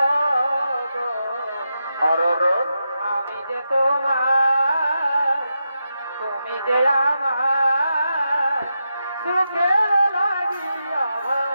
আর আমি যে তোমার, তুমি যে আমার, সুখে লাগিয়া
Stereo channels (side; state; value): both; inverted; correlation -0.87